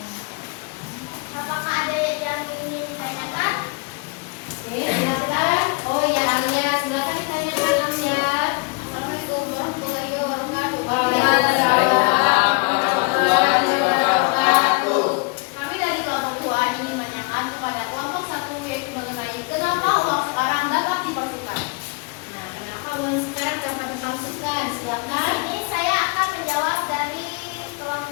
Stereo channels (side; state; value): right; quieter; 30.4 dB